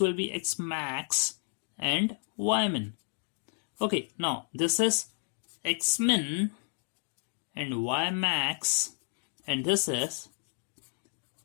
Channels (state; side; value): silent; right; digital silence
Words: will be x max and y min। Okay, now this is x min and y max and this is